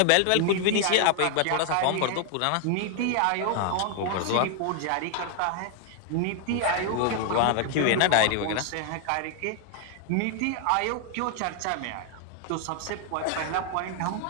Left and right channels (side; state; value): both; different; correlation 0.00